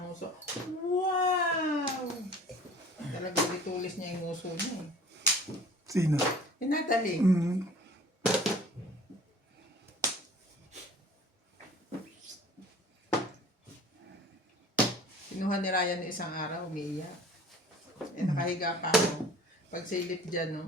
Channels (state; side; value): normal; both; correlation 0.47